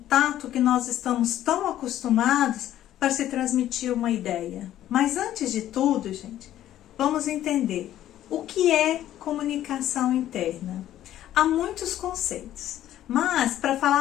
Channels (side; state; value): right; quieter; 12.5 dB